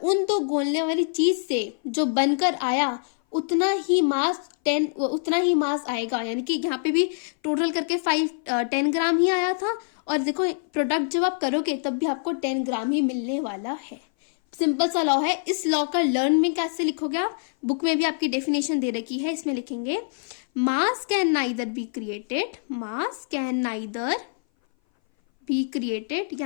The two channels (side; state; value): right; silent; 58 dB below the other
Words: उन दो गोलने वाली चीज से जो बनकर आया, उतना ही मास आएगा। यानी कि यहाँ पे भी टोटल करके 10 ग्राम ही आया था, और देखो प्रोडक्ट जब आप करोगे तब भी आपको 10 ग्राम ही मिलने वाला है। सिंपल सा लॉ है। इस लॉ का लर्न में कैसे लिखोगे आप? बुक में भी आपकी डेफिनेशन दे रखी है, इसमें लिखेंगे मास कैन नाइदर बी क्रिएटेड,